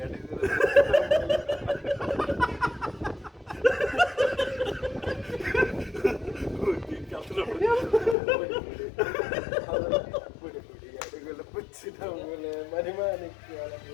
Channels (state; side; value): drops out; right; at 8.2 s